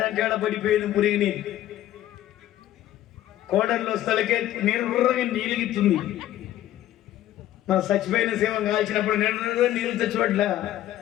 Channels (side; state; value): right; quieter; 13.3 dB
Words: పడిపోయింది మురిగిని. కోడల్లో స్థలకే నిర్రగా నీలిగిస్తుంది. మన చచ్చిపోయిన సేవ కాల్చినప్పుడు నిర్రగా నీళ్ళు తెచ్చిపట్ల.